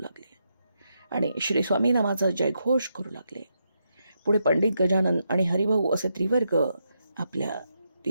आणि श्री स्वामी नामाचा जयघोष करू लागले. पुढे पंडित गजानन आणि हरिभाऊ असे त्रिवर्ग आपल्या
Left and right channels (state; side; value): inverted; both; correlation -0.82